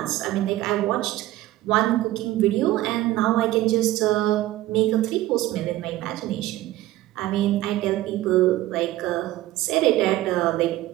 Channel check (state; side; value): quieter; left; 15.8 dB